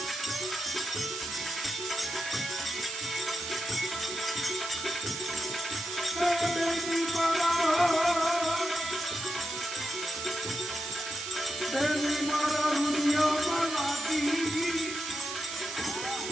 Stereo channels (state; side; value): noise; right; hiss, 5 dB below the sound